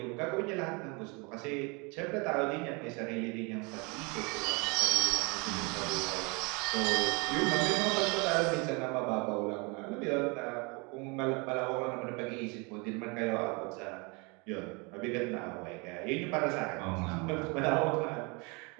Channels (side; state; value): left; quieter; 29.8 dB